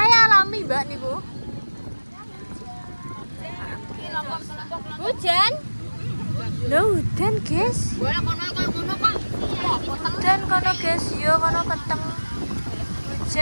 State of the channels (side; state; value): both; inverted; correlation -1.00